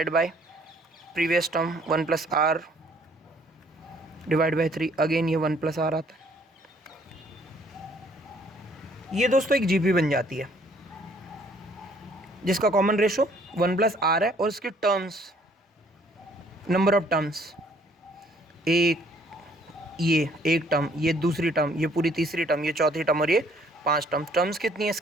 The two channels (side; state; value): both; normal; correlation 0.62